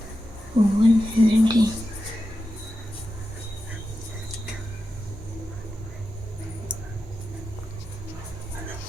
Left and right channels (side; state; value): both; normal; correlation 0.90